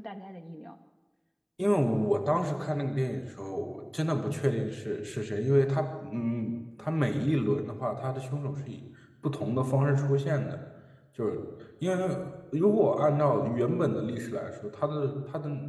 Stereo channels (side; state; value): both; identical; correlation 1.00